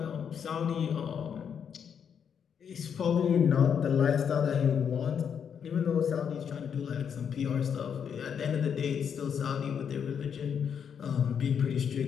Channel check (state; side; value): quieter; right; 7.6 dB